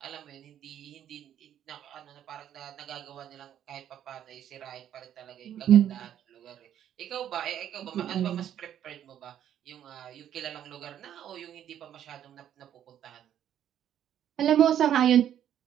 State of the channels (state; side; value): quieter; left; 10.3 dB